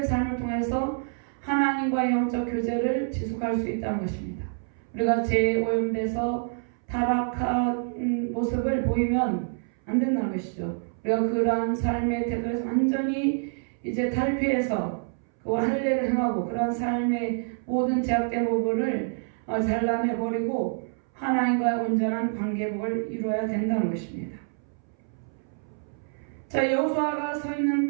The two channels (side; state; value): left; silent; 60 dB below the other